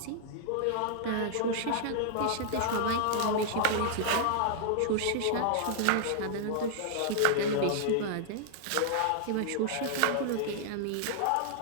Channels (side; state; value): both; different; correlation -0.01